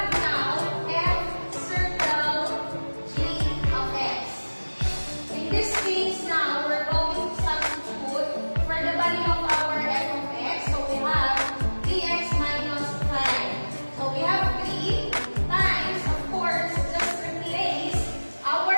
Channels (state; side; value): inverted; both; correlation -1.00